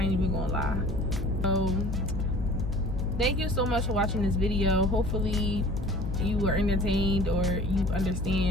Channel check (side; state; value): left; noise; hum, 2 dB below the sound